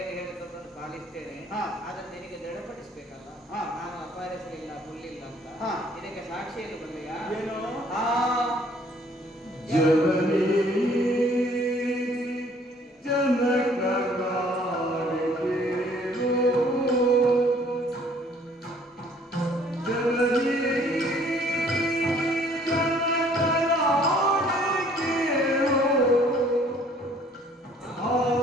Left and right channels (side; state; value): both; normal; correlation 0.58